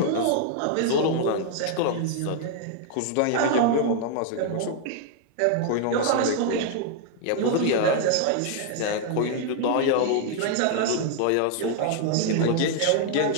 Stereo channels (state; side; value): different; both; correlation 0.00